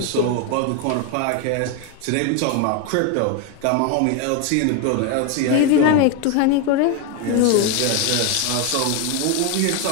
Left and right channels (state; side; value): different; both; correlation 0.01